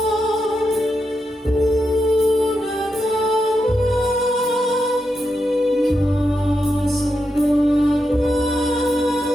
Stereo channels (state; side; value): normal; both; correlation 0.85